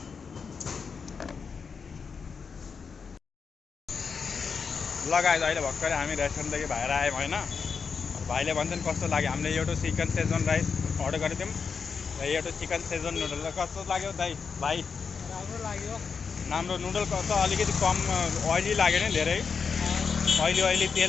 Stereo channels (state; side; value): quieter; right; 5.7 dB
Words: लगाएर अहिले भर्खरै हामी रेस्टुरेन्टदेखि बाहिर आयौँ होइन। भाइले भन्छन् कस्तो लाग्यो, हामीले एउटा चिकन शेजवान राइस अर्डर गरेको थियौँ र एउटा चिकन शेजवान नुडल। कस्तो लाग्यो भाइ? राम्रो लाग्यो। राम्रो नुडल कस्तो, अलिकति कम ओइली लाग्यो नि, धेरै ओइली